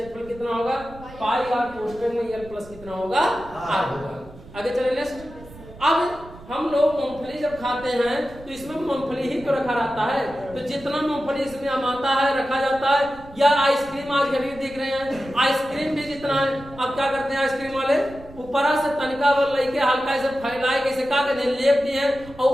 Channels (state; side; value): noise; right; rumble, 19 dB below the sound